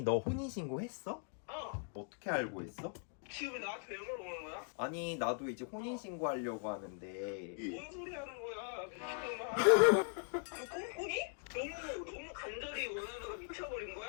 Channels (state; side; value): silent; right; 51 dB below the other